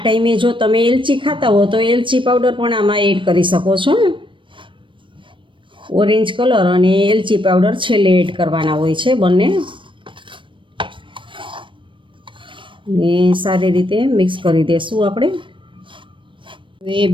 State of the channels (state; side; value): late; left; 0.24 ms